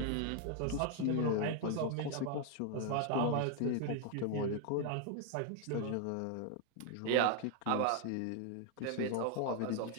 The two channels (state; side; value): different; both; correlation 0.00